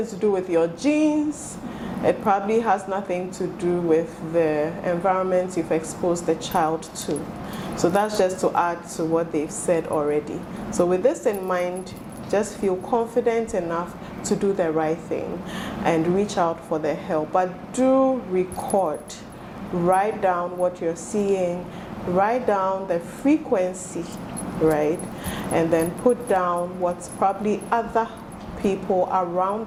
to do with your genes. It probably has nothing to do with the environment you've exposed the child to. So that's just to add to what they've said already. So with this in mind, just feel confident enough to do the right thing and reach out for the help. But do record. Write down what you're seeing. Write down the frequency, right? And then put down what's probably other people around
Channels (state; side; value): identical; both; correlation 1.00